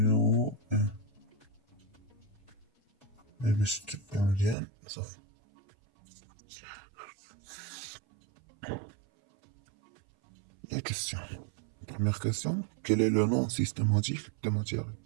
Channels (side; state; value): left; drops out; at 4.5 s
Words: 1. باش تبقى مزيان صافي. La question. Première question. Quel est le nom systématique des matières?